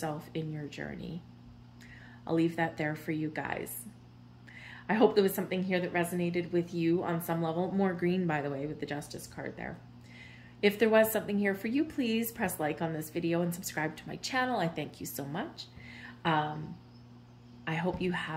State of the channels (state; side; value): identical; both; correlation 1.00